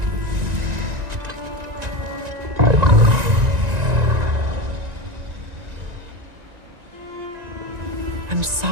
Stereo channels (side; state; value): left; late; 1.9 ms